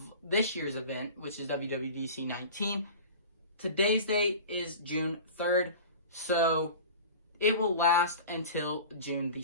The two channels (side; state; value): both; inverted; correlation -0.37